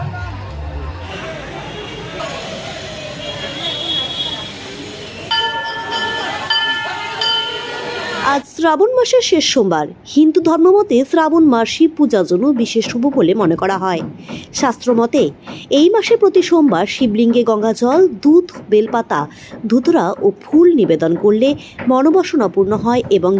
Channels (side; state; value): both; identical; correlation 1.00